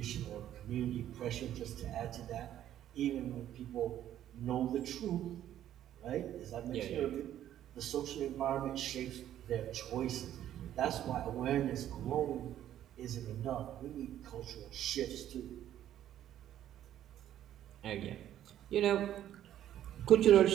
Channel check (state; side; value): quieter; left; 11.6 dB